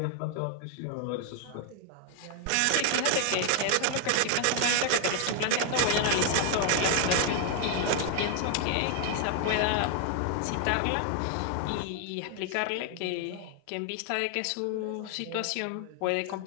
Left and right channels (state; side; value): different; both; correlation 0.00